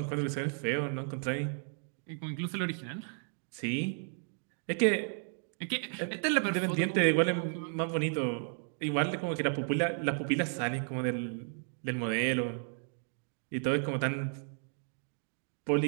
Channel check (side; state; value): left; silent; 55 dB below the other